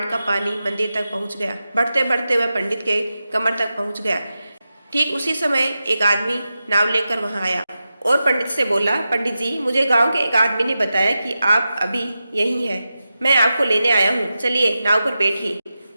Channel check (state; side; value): inverted; both; correlation -0.92